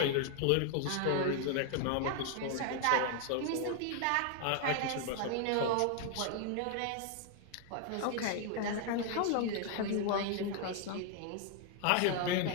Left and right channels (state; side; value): different; both; correlation 0.00